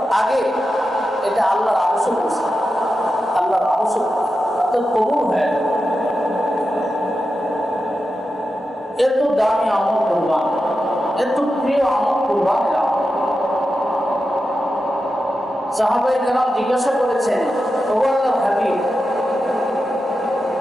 আগে এটা আল্লাহর আবশ্যক করছে, আল্লাহর আবশ্যক তো কবুল হয়। এত দামি আমল কুরবান, এত প্রিয় আমল কুরবানির আমল। সাহাবায়ে কেরাম জিজ্ঞাসা করেছেন, ও আল্লাহর হাবিব,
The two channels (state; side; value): normal; both; correlation 0.90